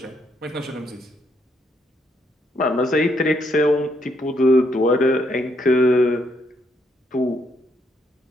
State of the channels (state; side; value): normal; both; correlation 0.74